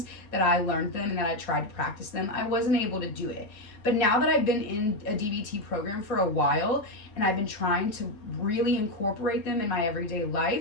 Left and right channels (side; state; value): right; late; 5.0 ms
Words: that I learned them and that I tried to practice them. I wasn't able to do it. But now that I've been in a DBT program for a while and I've been trying to really incorporate them in my everyday